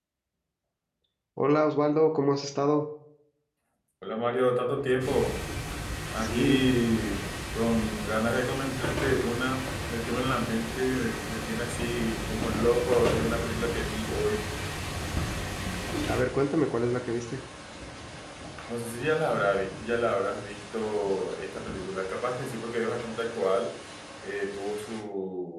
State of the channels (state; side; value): identical; both; correlation 1.00